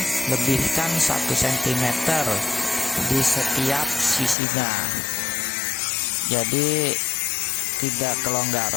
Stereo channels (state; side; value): drops out; right; at 4.4 s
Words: lebihkan 1 cm di setiap sisinya, jadi tidak